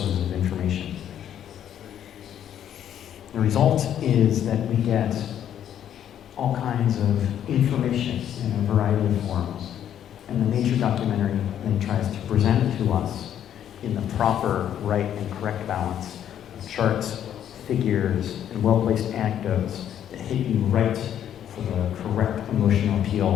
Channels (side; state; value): right; quieter; 10.1 dB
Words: of information. The result is that we get all kinds of information in a variety of forms, and the nature documentary then tries to present it to us in the proper, right, and correct balance of charts, figures, and well-placed anecdotes that hit you right for the correct emotional